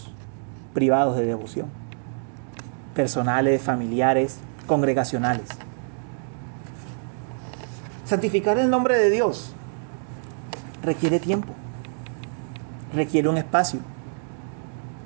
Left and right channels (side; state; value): left; silent; digital silence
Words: privados de devoción, personales, familiares, congregacionales. Santificar el nombre de Dios requiere tiempo, requiere un espacio.